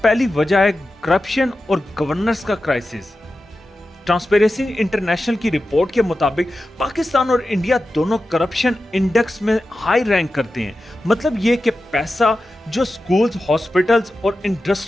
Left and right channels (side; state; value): both; normal; correlation 0.92